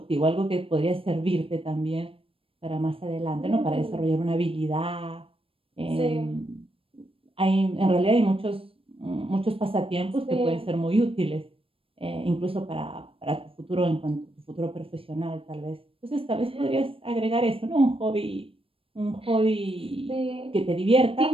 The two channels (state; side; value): late; left; 0.27 ms